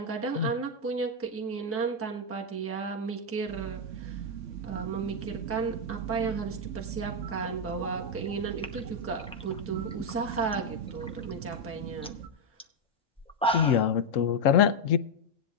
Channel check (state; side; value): normal; both; correlation 0.01